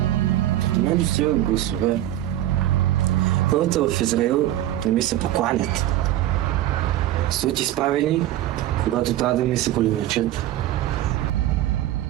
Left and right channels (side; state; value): left; quieter; 13.7 dB